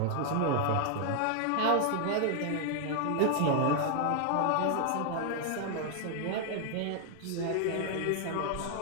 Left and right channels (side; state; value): both; different; correlation 0.00